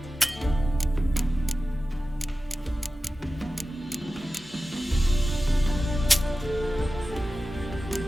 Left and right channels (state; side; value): normal; both; correlation 0.95